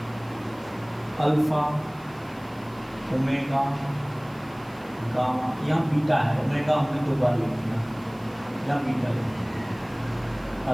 अल्फा ओमेगा गामा, यहाँ बीटा है, ओमेगा हमने 2 बार लिख दिया, यहाँ बीटा लिख दिया,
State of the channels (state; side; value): noise; right; hiss, 27 dB below the sound